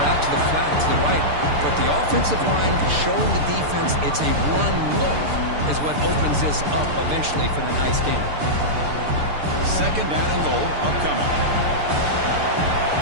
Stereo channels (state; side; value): late; left; 6.8 ms